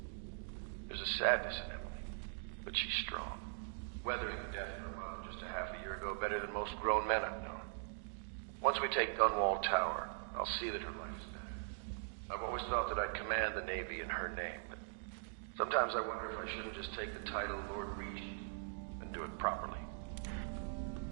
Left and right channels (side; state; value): left; silent; digital silence